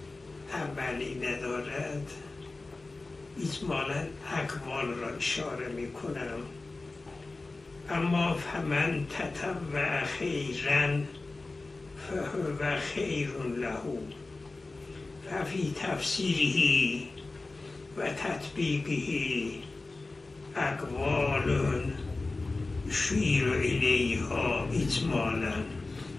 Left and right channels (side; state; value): right; quieter; 3.4 dB